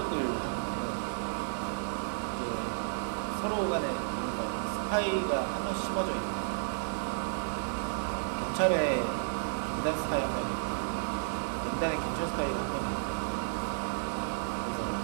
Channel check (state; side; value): silent; left; digital silence